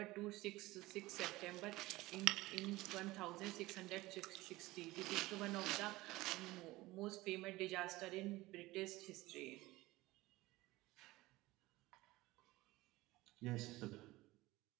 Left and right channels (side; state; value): left; quieter; 19.3 dB